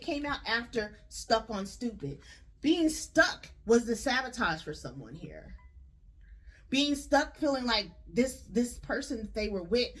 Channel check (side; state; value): both; identical; correlation 1.00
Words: after stuck on stupid. Being stuck was the sabotage for someone here. Being stuck, feeling like this person they were with,